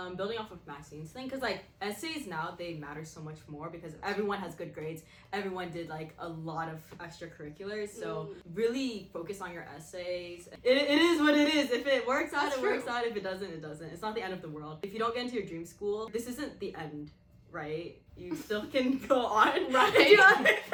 building off of Maxine's thing, because like essays now, they matter so much more because everyone has good grades. Everyone did like a lot of extracurriculars. So really focus on your essays. It is what it is. If it works out, That's it works true. out. If it doesn't, it doesn't. It's not the end of the world. If you don't get into your dream school, this isn't the end, right? You still can go on, Right. Do you know what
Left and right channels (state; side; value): identical; both; correlation 1.00